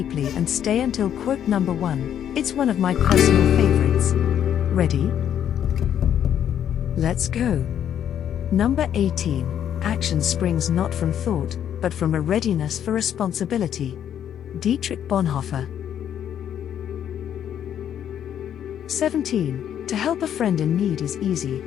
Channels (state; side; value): quieter; right; 9.8 dB